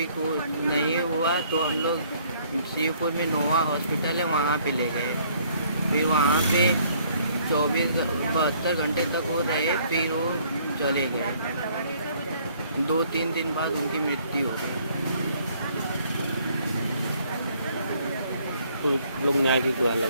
नहीं हुआ तो हम लोग शिवपुर में नोवा हॉस्पिटल है वहाँ पे ले गए। फिर वहाँ पे 72 घंटे तक वो रहे, फिर वो चले गए। 2-3 दिन बाद उनकी मृत्यु हो गई। तो लोग न्याय की गुहार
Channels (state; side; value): inverted; both; correlation -0.63